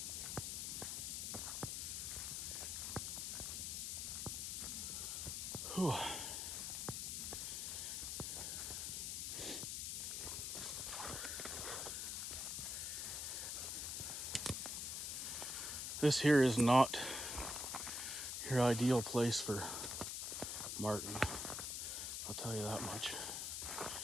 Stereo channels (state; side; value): noise; left; hiss, 2 dB below the sound